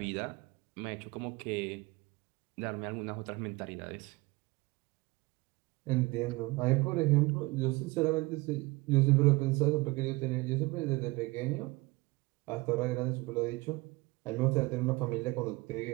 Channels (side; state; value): left; quieter; 23.1 dB